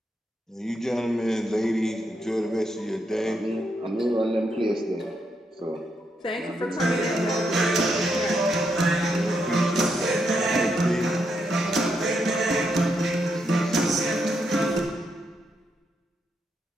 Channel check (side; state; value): both; normal; correlation 0.80